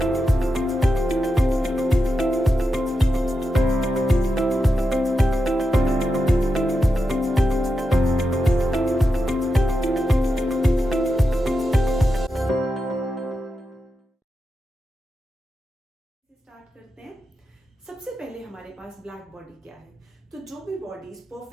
सबसे पहले हमारे पास ब्लैक बॉडी क्या है। तो जो भी बॉडीज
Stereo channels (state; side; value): normal; both; correlation 0.88